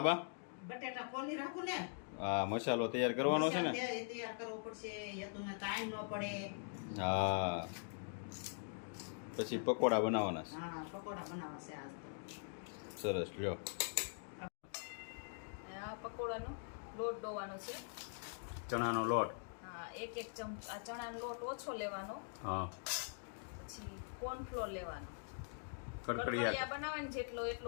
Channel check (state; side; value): silent; right; digital silence